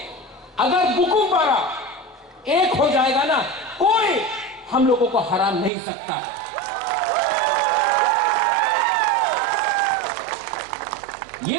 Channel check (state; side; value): drops out; left; at 5.7 s